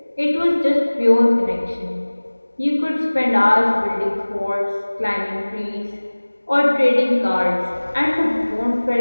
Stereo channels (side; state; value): both; inverted; correlation -1.00